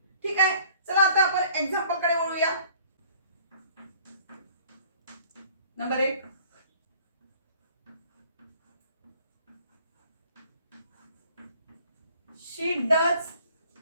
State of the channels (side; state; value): both; inverted; correlation -0.55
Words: ठीक आहे, चला आता आपण एक्झाम्पल कडे वळूया. Number 1, she does